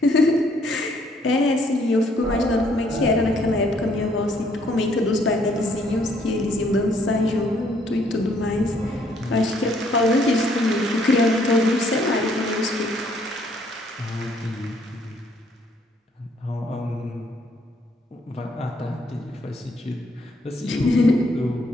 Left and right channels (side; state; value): both; normal; correlation 0.66